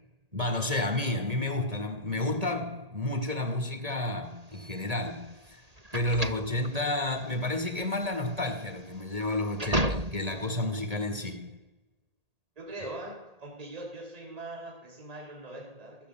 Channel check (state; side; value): late; left; 1.8 ms